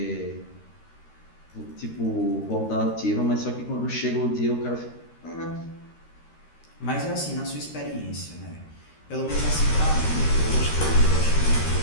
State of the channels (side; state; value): right; late; 13 ms